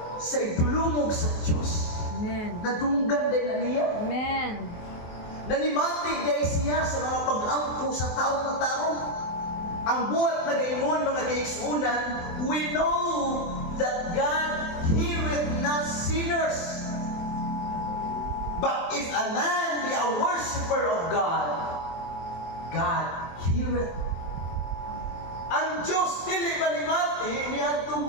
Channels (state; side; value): late; right; 24 ms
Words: sa idulumog sa Diyos, Amen. nadunggan din na niya. Amen. Nanimati day siya sa mga pag-ampo sa taong na tarong. Ang buhat na gayon mga kaigsunan, we know that God heareth not sinners. But if a man be a worshipper of God, God heareth. Ang Diyos dili manimati niya itong